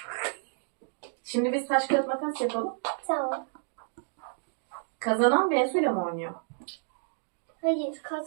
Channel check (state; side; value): silent; left; digital silence